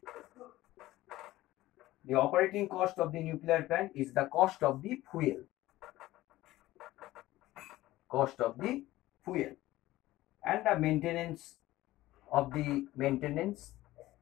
The operating cost of the nuclear plant is the cost of the fuel. And the maintenance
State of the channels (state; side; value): quieter; right; 16.7 dB